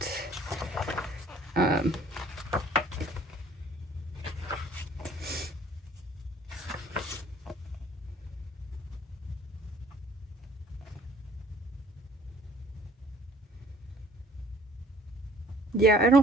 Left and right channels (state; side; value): normal; both; correlation 0.56